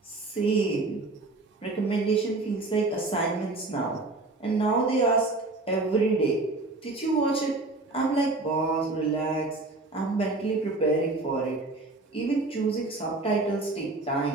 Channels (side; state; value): left; quieter; 3.2 dB